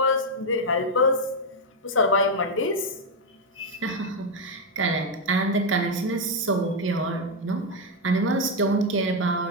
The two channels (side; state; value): both; normal; correlation 0.03